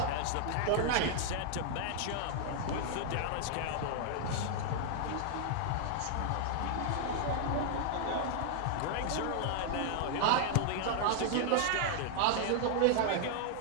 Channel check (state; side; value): different; both; correlation 0.00